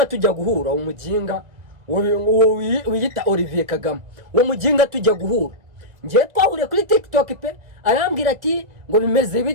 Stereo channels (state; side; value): late; left; 2.3 ms